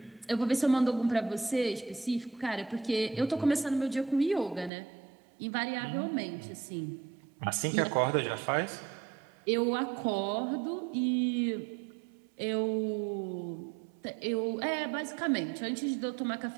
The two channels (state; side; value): drops out; left; at 4.7 s